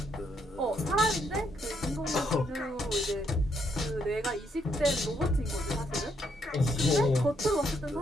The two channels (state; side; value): normal; both; correlation 0.75